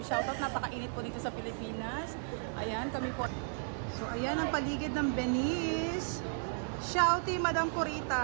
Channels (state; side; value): silent; left; digital silence